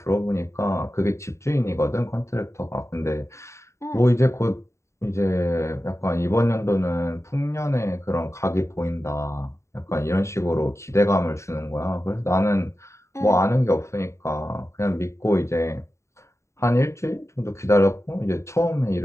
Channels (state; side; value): late; right; 0.14 ms